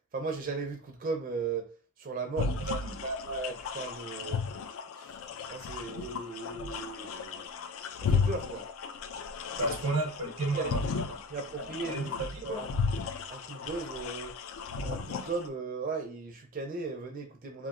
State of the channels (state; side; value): normal; both; correlation 0.32